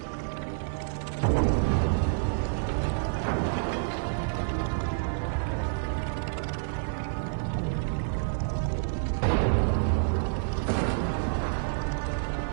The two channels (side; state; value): left; silent; digital silence